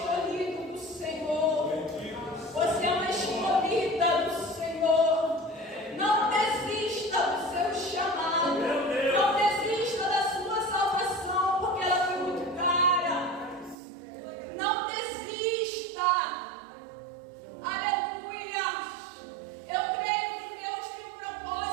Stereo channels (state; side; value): drops out; left; at 13.8 s